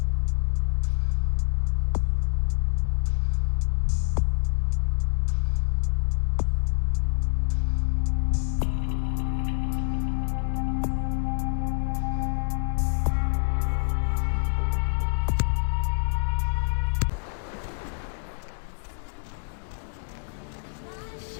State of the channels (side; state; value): right; silent; digital silence